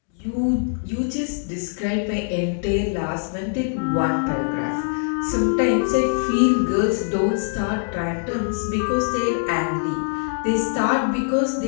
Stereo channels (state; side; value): silent; right; digital silence